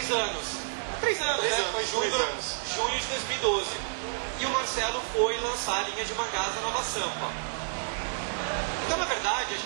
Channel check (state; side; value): silent; left; 58 dB below the other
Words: anos. 3 anos, né? Foi junho de 2012. E o Marcelo foi lançar a linha de mangás da Nova Sampa. Então, na verdade, a